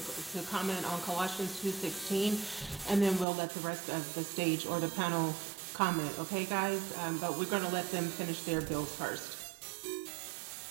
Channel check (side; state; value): left; drops out; at 3.2 s